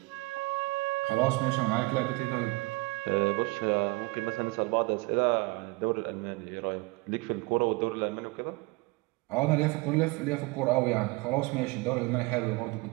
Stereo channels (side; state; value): left; quieter; 24.7 dB